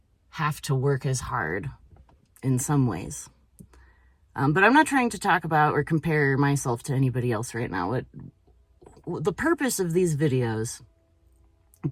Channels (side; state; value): both; identical; correlation 1.00